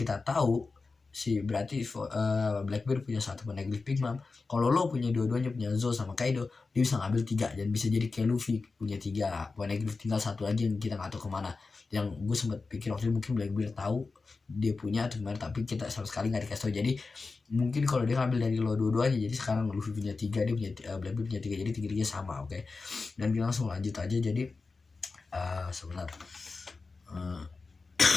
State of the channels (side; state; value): right; quieter; 4.1 dB